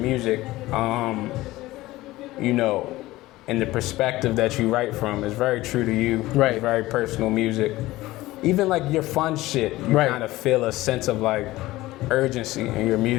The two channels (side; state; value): right; quieter; 17.9 dB